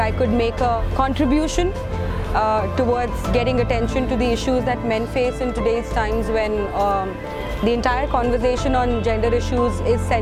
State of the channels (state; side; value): identical; both; correlation 1.00